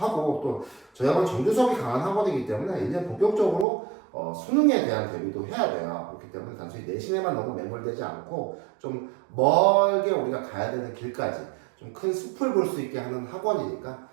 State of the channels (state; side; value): drops out; left; at 3.7 s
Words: 또 저희 학원 정규 수업이 강한 학원이기 때문에 이제 본격적으로 수능에 대한 대비도 해야 돼요. 그렇기 때문에 단순히 내신에만 너무 매몰되지 않고 좀 멀게 우리가 가야 되는 길까지 좀 큰 숲을 볼 수 있게 하는 학원이니까